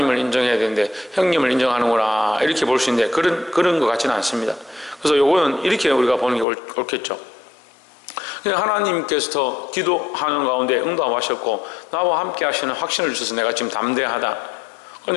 인정해야 되는데 형님을 인정하는구나 이렇게 볼 수 있는데 그런 것 같지는 않습니다. 그래서 요거는 이렇게 우리가 보는 게 옳겠죠. 하나님께서 기도하는 가운데 응답하셨고 나와 함께 하시는 확신을 주셔서 내가 지금 담대하다.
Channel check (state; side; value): drops out; right; at 6.5 s